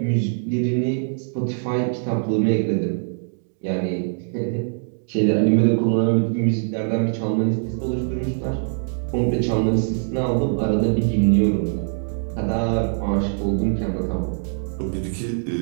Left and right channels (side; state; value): left; silent; digital silence